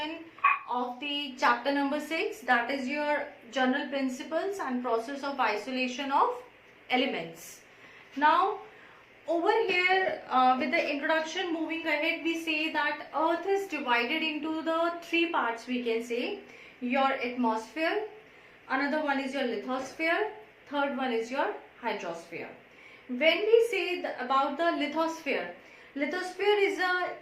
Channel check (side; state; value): both; identical; correlation 1.00